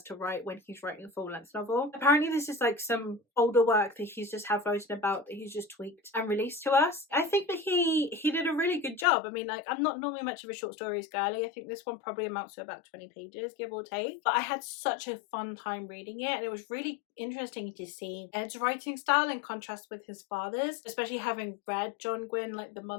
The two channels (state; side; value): drops out; right; at 9.1 s